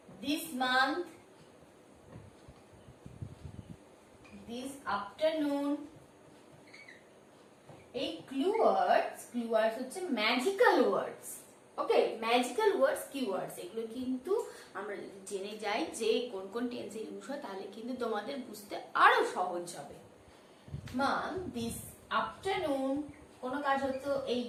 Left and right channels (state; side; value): identical; both; correlation 1.00